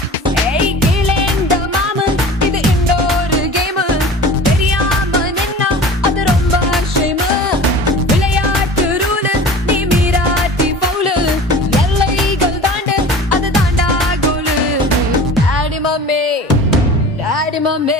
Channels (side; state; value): both; normal; correlation 0.39